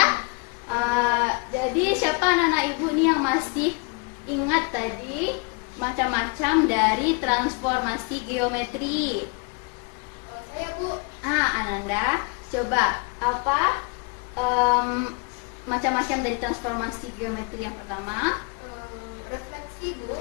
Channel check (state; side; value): quieter; right; 32.6 dB